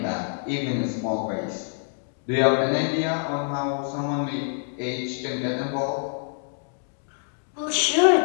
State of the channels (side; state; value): right; silent; 61 dB below the other